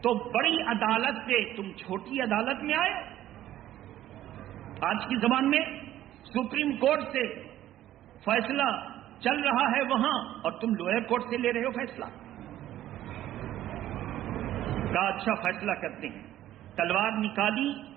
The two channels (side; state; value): left; quieter; 13.1 dB